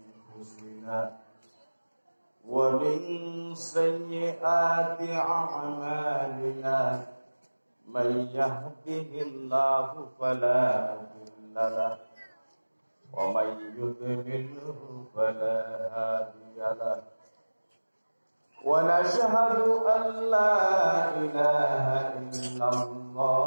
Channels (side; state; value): both; inverted; correlation -1.00